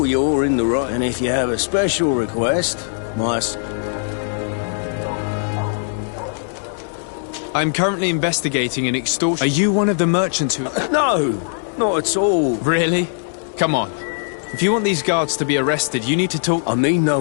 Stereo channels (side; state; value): right; silent; 66 dB below the other